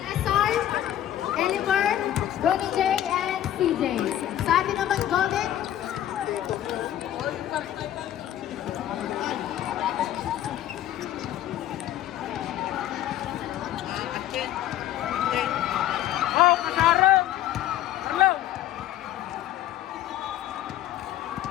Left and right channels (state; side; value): quieter; right; 12.2 dB